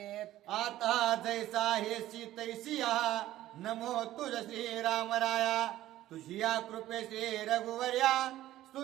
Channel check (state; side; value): quieter; left; 14.3 dB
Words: आता जैसा हेसी तैसिया नमो तुझ श्री रामराया तुझी या कृपे श्री रघुवर्या